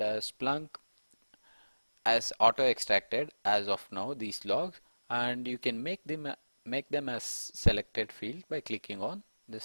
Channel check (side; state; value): both; inverted; correlation -1.00